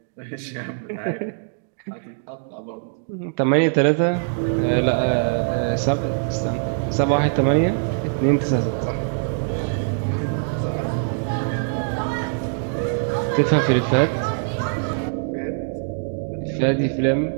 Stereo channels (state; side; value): silent; left; 64 dB below the other